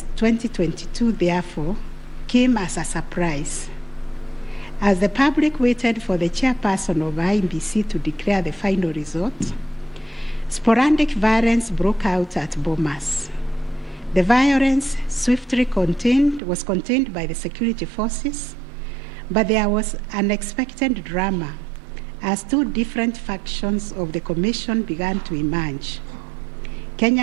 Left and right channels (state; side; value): drops out; left; at 16.4 s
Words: 2022, therefore, came as a surprise. As the public waited for the chairperson of IEBC to declare the final result, sporadic violence broke out at Bomas. The violence swiftly was contained by the security forces, but there was unexpected drama as 2 different factions of the Commission began to emerge.